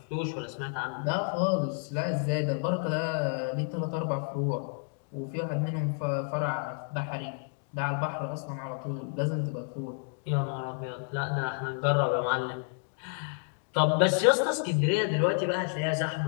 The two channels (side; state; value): right; silent; 55 dB below the other